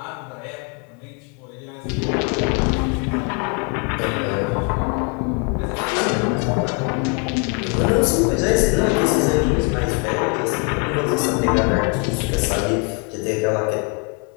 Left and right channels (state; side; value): quieter; right; 34.6 dB